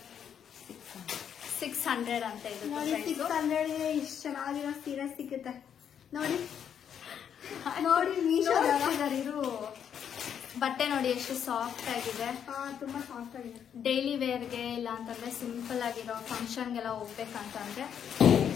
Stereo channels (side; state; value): right; quieter; 8.5 dB